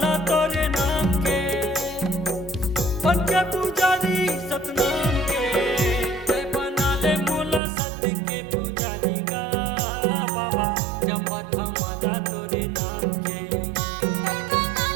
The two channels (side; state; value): left; drops out; at 7.6 s